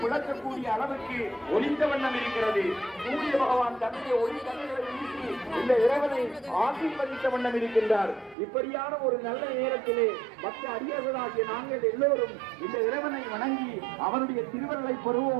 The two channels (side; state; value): left; drops out; at 8.3 s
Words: பிளக்கக்கூடிய அளவுக்கு ஒலித்த வண்ணம் இருக்கிறது. சூரிய பகவான் தன்னுடைய ஒளி கண்களை வீசி இந்த இறைவனை ஆசீர்வதித்த வண்ணம் இருக்கின்றார். இப்படியான ஒரு நல்ல நேரத்திலே பக்த அடியவர்களாகிய நாங்கள் எல்லோரும் இந்த இறைவனை வணங்கி அவனுடைய திருவருளை